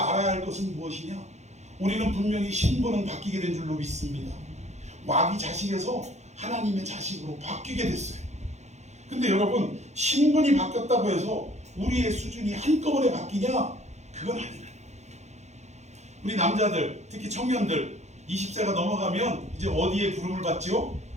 알아야 할 것은 무엇이냐? 우리는 분명히 신분은 바뀌게 된 줄로 믿습니다. 마귀 자식에서 하나님의 자식으로 바뀌게 됐어요. 근데 여러분, 신분이 바뀌었다고 해서 우리의 수준이 한꺼번에 바뀌냐? 그건 아니라. 우리 남자들, 특히 청년들 20세가 넘어가면 이제 어디에 부름을 받죠?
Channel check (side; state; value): left; late; 0.33 ms